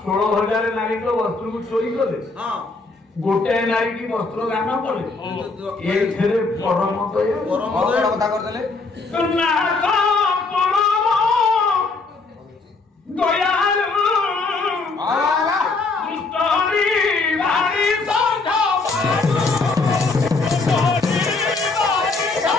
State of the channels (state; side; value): quieter; right; 3.8 dB